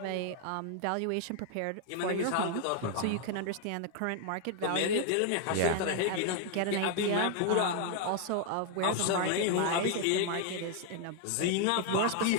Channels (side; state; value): both; different; correlation 0.00